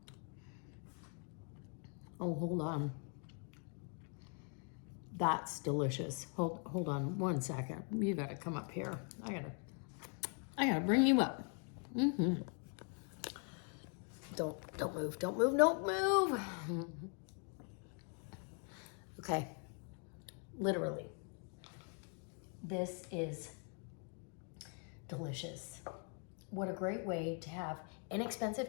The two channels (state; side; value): quieter; right; 39.3 dB